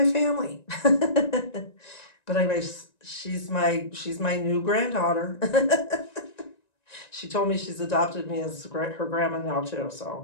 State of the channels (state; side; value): late; right; 1.9 ms